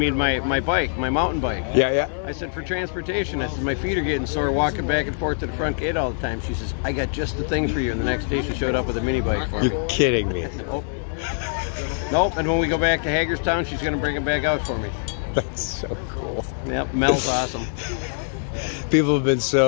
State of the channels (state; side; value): silent; right; 61 dB below the other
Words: my bike, my mountain bike. Yeah. I said, for transportation, I said, my feet are getting sore walking back and forth to the front gate all the time. She says, "I got just the thing for you." And the next day she showed up with a mini bike for me. You're kidding me. Nope. And when we go back to Hagerstown, she's going to bring it back out for me. That's so cool. Yep, Mel's awesome. People have been